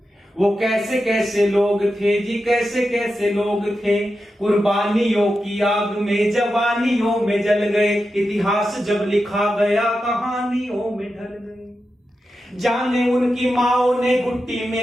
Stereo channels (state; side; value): normal; both; correlation 0.90